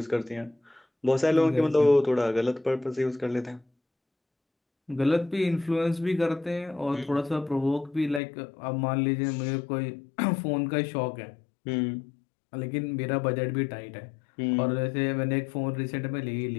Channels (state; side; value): drops out; right; at 8.2 s